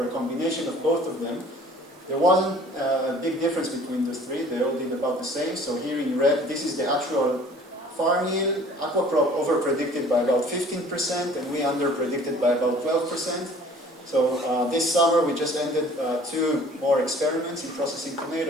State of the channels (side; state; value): both; normal; correlation 0.51